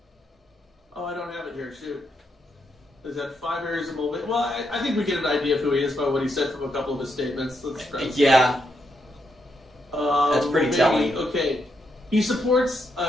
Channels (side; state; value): both; normal; correlation 0.80